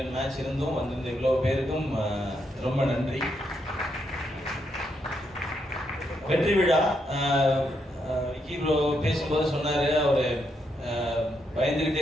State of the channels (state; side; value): normal; both; correlation 0.79